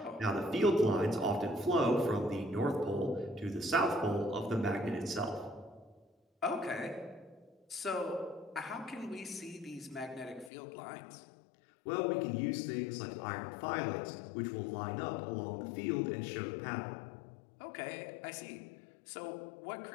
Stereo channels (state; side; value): drops out; right; at 10.5 s